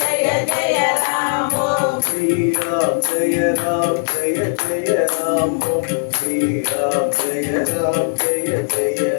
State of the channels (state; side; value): silent; right; digital silence